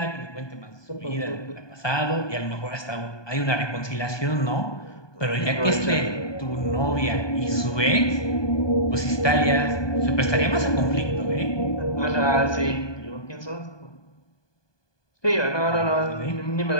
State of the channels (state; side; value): late; right; 1.2 ms